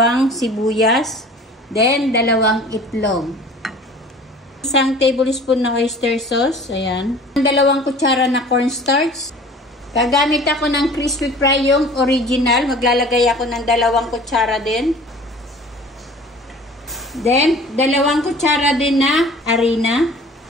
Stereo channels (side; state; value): both; normal; correlation 0.45